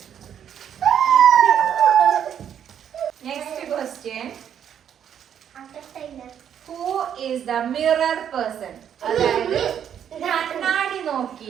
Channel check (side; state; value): left; quieter; 9.0 dB